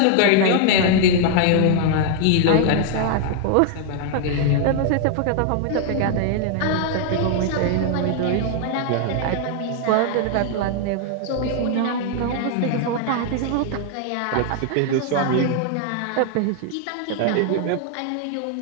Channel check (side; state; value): both; different; correlation 0.00